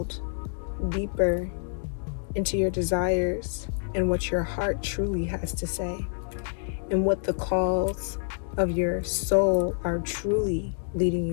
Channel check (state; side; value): silent; right; digital silence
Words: deeper into your desires and what your heart truly has to say, and what the calls of your soul are truly leading